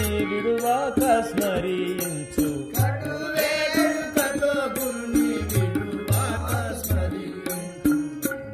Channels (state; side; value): identical; both; correlation 1.00